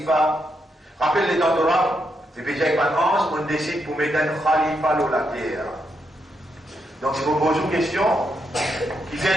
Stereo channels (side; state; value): both; normal; correlation 0.81